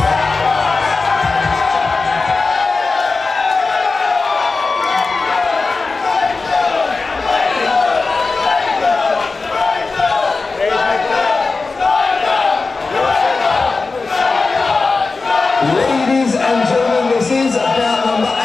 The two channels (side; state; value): right; quieter; 4.0 dB